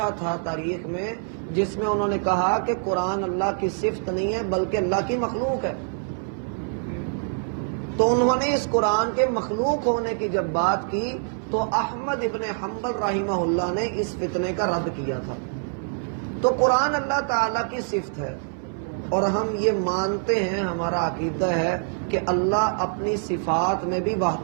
تھا تاریخ میں جس میں انہوں نے کہا کہ قرآن اللہ کی صفت نہیں ہے بلکہ اللہ کی مخلوق ہے۔ تو انہوں نے اس قرآن کے مخلوق ہونے کی جب بات کی تو احمد ابن حنبل رحمہ اللہ نے اس فتنے کا رد کیا تھا۔ تو قرآن اللہ تعالیٰ کی صفت ہے، اور ہم یہ مانتے ہیں، ہمارا عقیدہ ہے کہ اللہ اپنی صفات میں بھی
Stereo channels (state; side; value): silent; left; 62 dB below the other